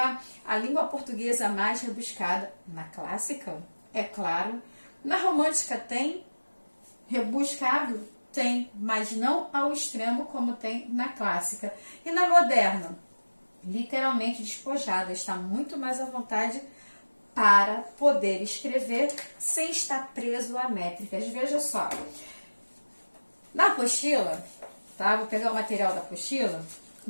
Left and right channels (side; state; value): both; inverted; correlation -1.00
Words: a língua portuguesa mais rebuscada. Na clássica, é claro. Na romântica tem rebuscado? Tem, mas não ao extremo como tem na clássica. E na moderna? Literalmente despojada, está muito mais à vontade para poder escrever sem estar preso a métricas. Veja só, na apostila, tá? Vou pegar o material da apostila,